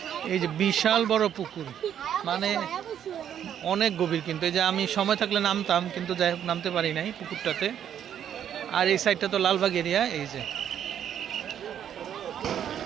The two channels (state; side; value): quieter; left; 9.6 dB